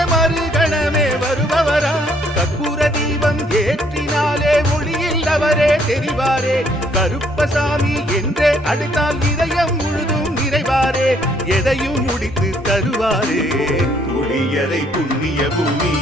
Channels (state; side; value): normal; both; correlation 0.66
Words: மறுகணமே வருபவராம். கற்பூர தீபம் ஏற்றினாலே ஒளியில் அவரே தெரிவாரே. கருப்பசாமி என்றே அழைத்தால் இதயம் முழுதும் நிறைவாரே. எதையும் முடித்து தருவாரே. புளியரை புண்ணிய பூமி